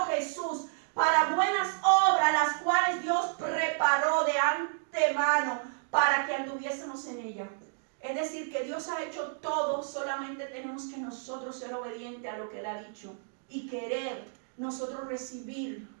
Jesús, para buenas obras, las cuales Dios preparó de antemano para que anduviésemos en ella. Es decir, que Dios ha hecho todo, solamente tenemos que nosotros ser obedientes a lo que Él ha dicho y querer nosotros recibir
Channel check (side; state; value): left; silent; digital silence